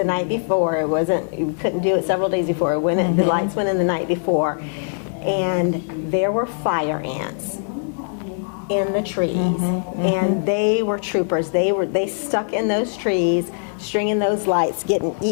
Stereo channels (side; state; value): right; silent; digital silence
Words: night before. We couldn't do it several days before. The lights went in the night before, and there were fire ants in the trees, and they were troopers. They stuck in those trees, stringing those lights, getting